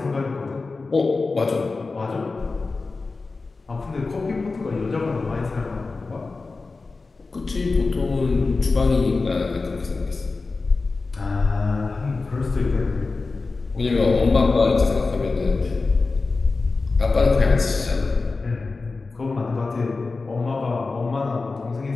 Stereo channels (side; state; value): right; quieter; 3.9 dB